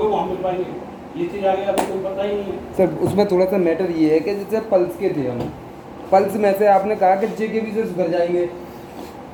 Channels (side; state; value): both; identical; correlation 1.00